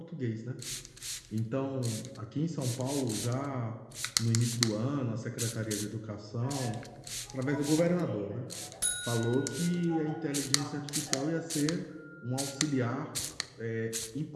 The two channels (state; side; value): identical; both; correlation 1.00